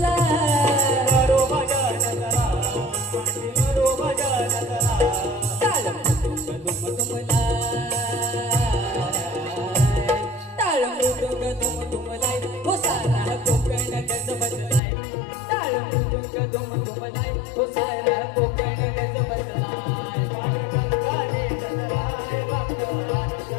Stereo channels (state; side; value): drops out; right; at 14.8 s